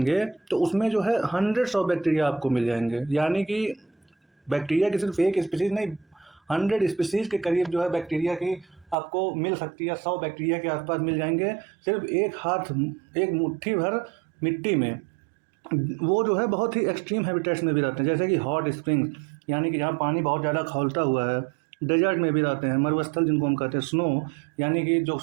तो उसमें जो है हंड्रेड्स ऑफ बैक्टीरिया आपको मिल जाएंगे। यानी कि बैक्टीरिया की सिर्फ एक स्पीसीज नहीं, 100 स्पीसीज के करीब जो है बैक्टीरिया की आपको मिल सकती है। 100 बैक्टीरिया के आसपास मिल जाएंगे सिर्फ एक मुट्ठी भर मिट्टी में। वो जो है बहुत ही एक्सट्रीम हैबिटेट्स में भी रहते हैं, जैसे कि हॉट स्प्रिंग्स यानी कि जहाँ पानी बहुत ज़्यादा खौलता हुआ है। डेजर्ट में भी रहते हैं, मरुस्थल जिनको हम कहते हैं, स्नो यानी कि जो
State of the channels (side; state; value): left; drops out; at 9.0 s